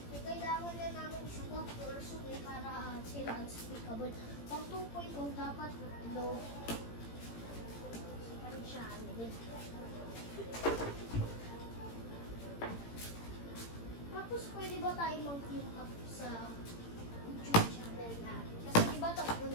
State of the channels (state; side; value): late; right; 18 ms